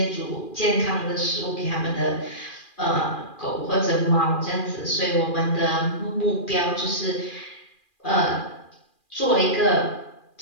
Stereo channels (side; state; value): right; late; 2.4 ms